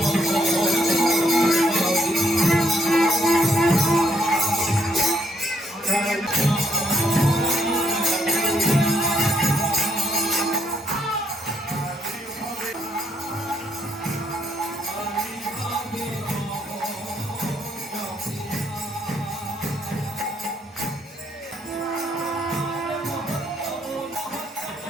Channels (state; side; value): normal; both; correlation 0.73